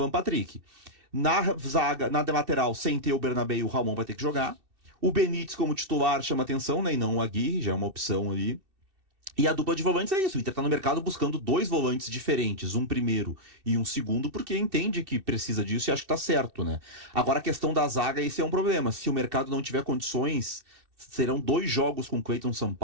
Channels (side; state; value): left; late; 2.6 ms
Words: Patrick. Na zaga, na lateral, sem ter o Bernabé, o Ramon vai ter que jogar. O Benítez como titular chama atenção, né? E não o Aguirre, já é uma opção ali. E a dupla de volantes é isso. O Inter tá no mercado buscando 2 volantes diferentes, um primeiro e um segundo, porque entende que precisa disso e acha que tá certo, né? Agora a questão da zaga, esse é um problema. Se o mercado não tiver condições, serão 2 jogos com Cleiton